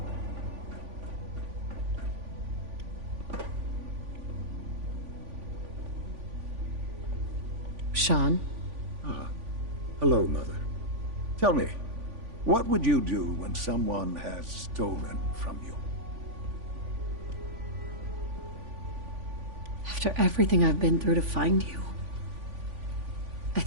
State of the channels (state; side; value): late; left; 3.5 ms